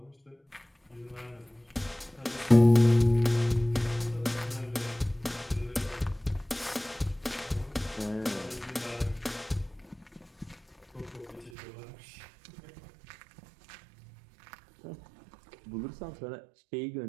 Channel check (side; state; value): left; drops out; at 11.5 s